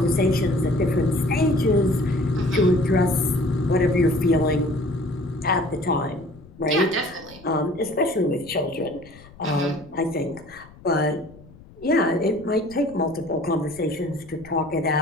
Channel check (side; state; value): left; noise; rumble, 22 dB below the sound